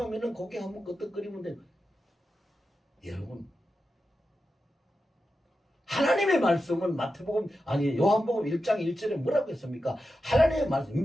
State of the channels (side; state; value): both; normal; correlation 0.90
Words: 고개 한번 끄덕거리면 돼. 여러분, 하나님의 말씀은 요한복음 1장 1절에 뭐라고 했습니까? 하나님의